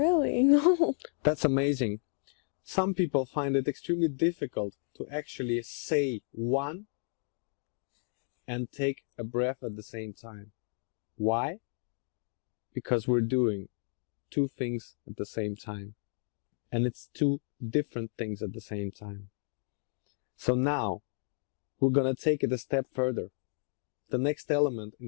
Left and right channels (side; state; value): right; silent; 56 dB below the other